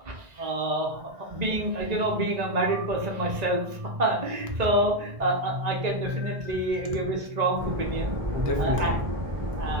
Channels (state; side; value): late; left; 1.9 ms